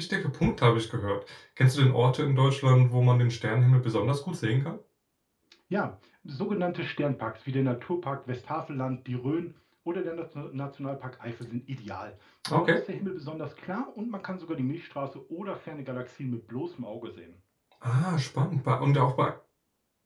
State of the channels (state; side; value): identical; both; correlation 1.00